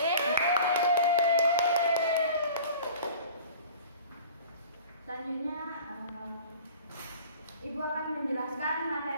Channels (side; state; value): both; inverted; correlation -0.44